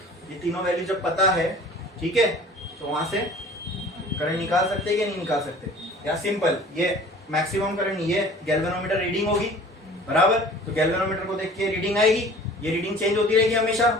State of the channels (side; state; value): both; normal; correlation 0.46